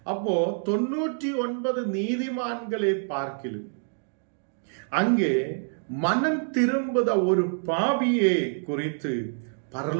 அப்போ 99 நீதிமான்களை பார்க்கிலும் அங்கே மனம் திரும்புத ஒரு பாவியை குறித்து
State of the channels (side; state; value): left; silent; digital silence